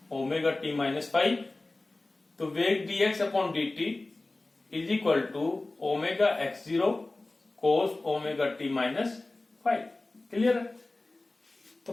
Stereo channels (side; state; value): right; quieter; 3.0 dB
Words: ωt-5, तो वेग dx/dt = ωx0 cos ωt-5। Clear है? तो